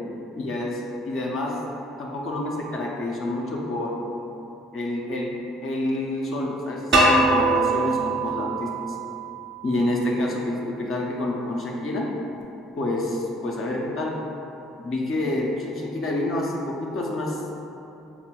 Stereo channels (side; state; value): both; normal; correlation 0.59